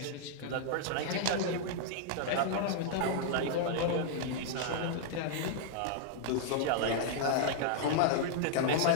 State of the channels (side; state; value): both; different; correlation -0.01